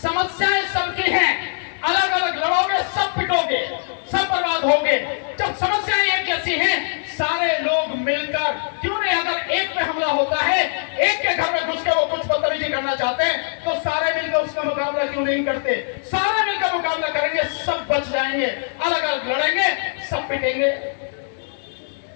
समस्याएं सबकी हैं, अलग अलग लड़ोगे, सब पिटोगे, सब बर्बाद होगे। जब समस्याएं एक जैसी हैं, सारे लोग मिलकर, क्यों नहीं, अगर एक पे हमला होता है, एक के घर में घुस के वो कुछ बदतमीजी करना चाहते हैं, तो सारे मिलकर उसका मुकाबला क्यों नहीं करते? सारे मिलकर मुकाबला करेंगे, सब बच जाएंगे। अलग अलग लड़ेंगे, सब पिटेंगे।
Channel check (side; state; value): right; silent; 64 dB below the other